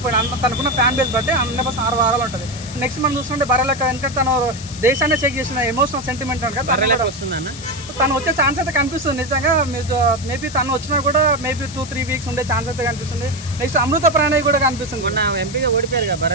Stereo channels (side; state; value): left; noise; hiss, 14 dB below the sound